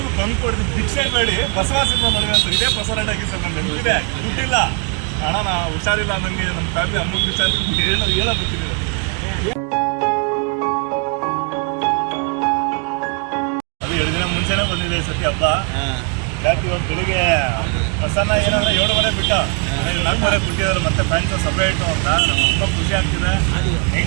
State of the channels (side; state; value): left; quieter; 39.0 dB